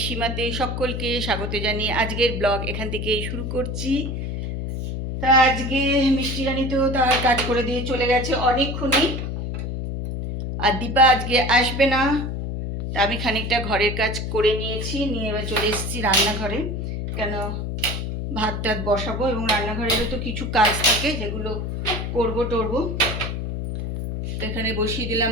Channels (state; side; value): noise; left; hum, 4 dB below the sound